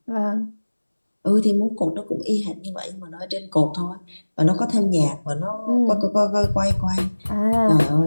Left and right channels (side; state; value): both; inverted; correlation -1.00